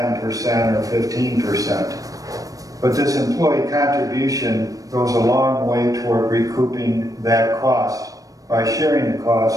or 15%. But this employee contribution goes a long way toward recouping that cost by sharing the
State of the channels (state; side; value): late; left; 0.17 ms